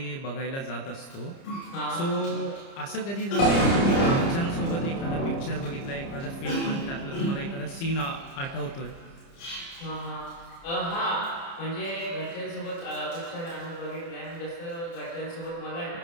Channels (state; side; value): late; right; 30 ms